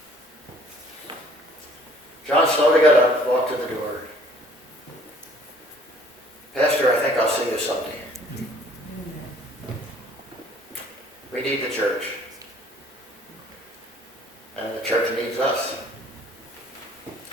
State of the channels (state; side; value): normal; both; correlation 0.56